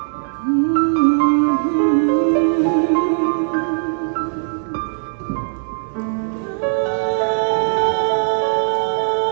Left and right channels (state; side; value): silent; left; digital silence